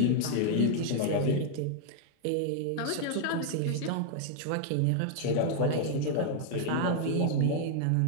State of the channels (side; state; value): both; different; correlation 0.00